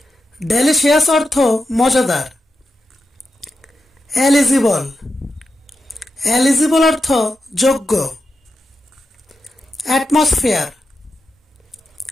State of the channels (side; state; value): both; normal; correlation 0.89